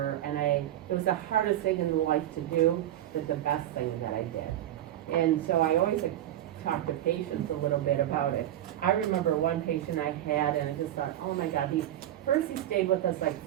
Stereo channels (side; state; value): left; quieter; 12.5 dB